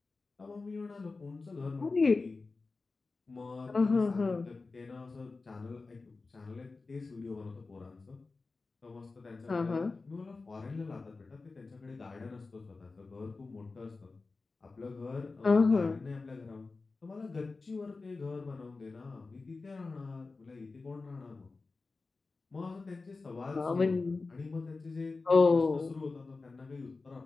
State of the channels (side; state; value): right; quieter; 3.9 dB